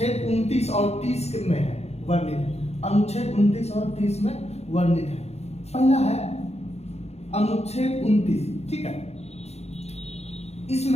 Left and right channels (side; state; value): right; late; 0.31 ms